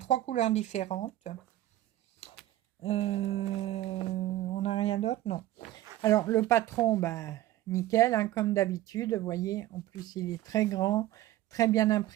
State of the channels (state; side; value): quieter; left; 14.8 dB